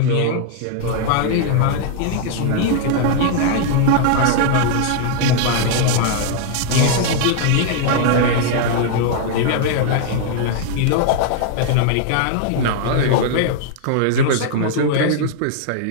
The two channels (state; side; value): different; both; correlation -0.01